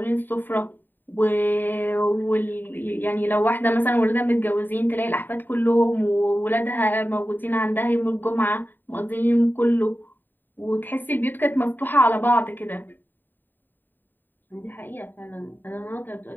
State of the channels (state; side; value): late; right; 0.091 ms